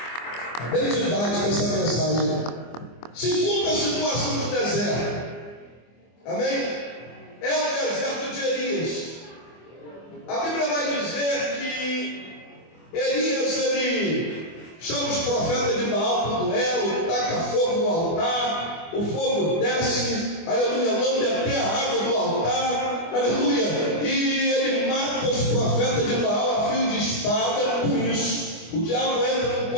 A bem didática essa mensagem. Segunda situação do deserto. Amém? É o deserto de Elias. A Bíblia vai dizer que Elias, ele chama os profetas de Baal para o duelo, taca fogo no altar, o fogo desce, aleluia, lambe até a água do altar, aleluia, e ele mata os profetas de Baal a fio de espada. Com isso, o diabo entra no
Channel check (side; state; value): right; late; 24 ms